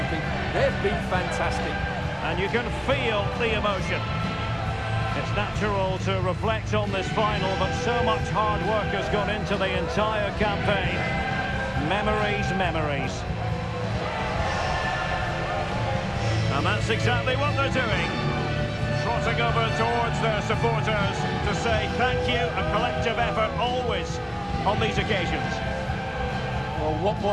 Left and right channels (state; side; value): identical; both; correlation 1.00